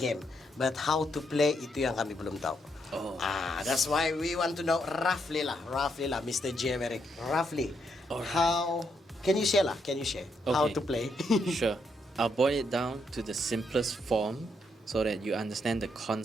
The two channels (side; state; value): both; normal; correlation 0.77